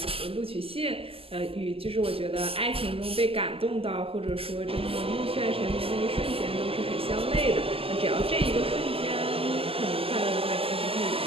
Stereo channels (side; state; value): left; late; 0.27 ms